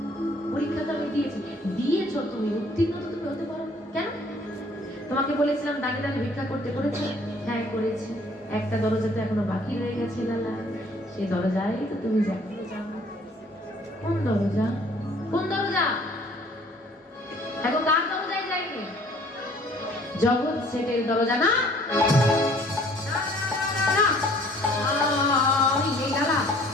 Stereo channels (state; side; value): normal; both; correlation 0.56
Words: পরীক্ষা তো আমি দিয়েছি। দিয়েছো তুমি, উত্তীর্ণ তো তুমি হতে পারো কেন? তোমাকে বলেছিলাম দাঁড়িয়ে দাঁড়িয়ে ভিক্ষা করতে, করেছো? হ্যাঁ করেছি। একটা দরজা তো এখনো বাকি রয়ে গেছে লালা, সেই দরজায় তো তুমি যাও। কোন দরজা? কোন দরজা? এখন কার দরজায় যাইনি? জগৎ সেটের দরজা না? না, এই লালা